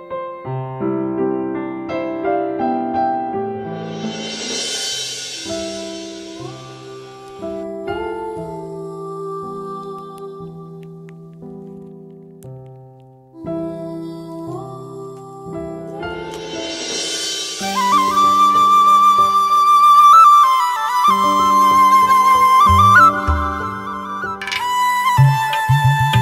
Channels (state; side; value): identical; both; correlation 1.00